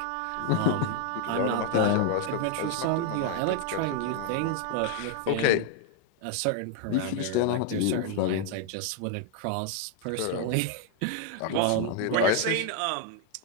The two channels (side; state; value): both; different; correlation 0.00